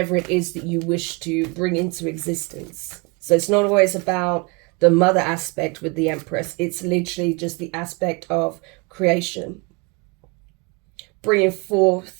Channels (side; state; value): left; quieter; 29.7 dB